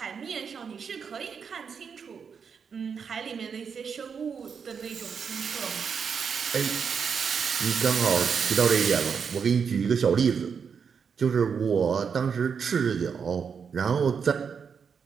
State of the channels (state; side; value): quieter; left; 6.4 dB